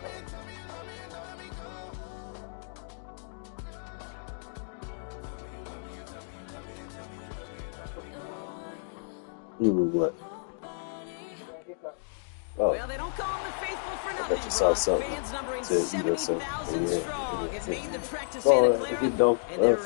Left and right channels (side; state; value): right; silent; digital silence